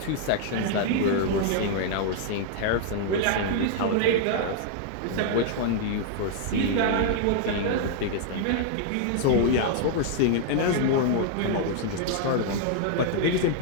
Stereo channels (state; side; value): different; both; correlation -0.01